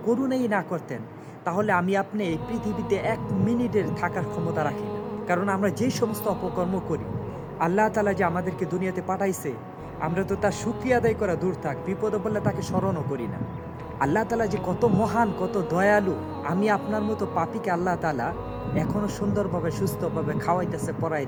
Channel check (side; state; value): both; identical; correlation 1.00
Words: করুণাই না করতেন, তাহলে আমি আপনি এই পৃথিবীতে 1 মিনিটের থাকার ক্ষমতা রাখি না। কারণ আমরা যে সমস্ত অপকর্ম করি, আল্লাহ তাআলা যে আমাদেরকে দুনিয়াতে পাঠাইছে, আমরা তো তার শুকরিয়া আদায় করা দূর থাক, বিপদে পড়লে তাকে স্মরণও করি না। আল্লাহ তাআলা যে কত মহান, কত দয়ালু। আমি আপনার মতো পাপীকে আল্লাহ তাআলা এখনো সুন্দরভাবে সুস্থভাবে খাওয়াইতেছে,